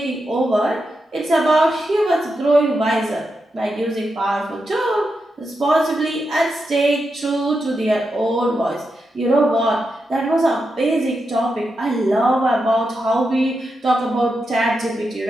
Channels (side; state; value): both; normal; correlation 0.87